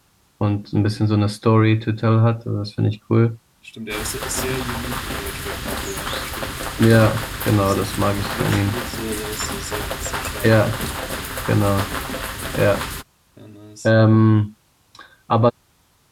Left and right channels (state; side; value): identical; both; correlation 1.00